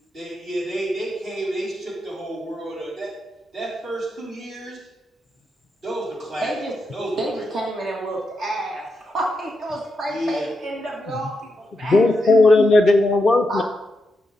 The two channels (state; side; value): normal; both; correlation 0.85